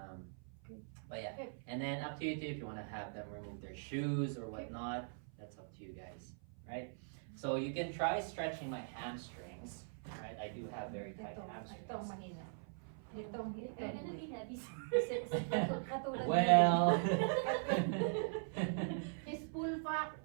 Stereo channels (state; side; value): silent; left; 50 dB below the other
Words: Okay. But yeah, Okay. and then up to you too if you want to have them remove their shoes or whatnot. That's up to you guys, right? So you can try stretching my hamstrings, right? I do have very tight Itong hamstrings. mahina. Itong They're gonna be heavy. katulad Well, his full fat,